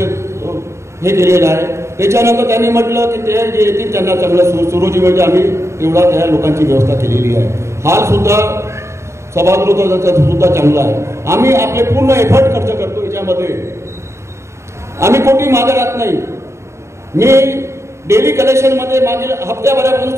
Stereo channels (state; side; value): late; left; 0.14 ms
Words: केलेलं आहे. त्याच्यानंतर त्यांनी म्हटलं की ते जे येतील त्यांना चांगलं सुरुची म्हणजे आम्ही तेवढा त्या लोकांची व्यवस्था केलेली आहे. हाल सुद्धा सभागृहाचा सुद्धा चांगला आहे. आम्ही आपले पूर्ण एफर्ट खर्च करतो याच्यामध्ये. आम्ही कोणी मागे राहत नाही. मी डेली कलेक्शनमध्ये मागील हप्त्याभरापासून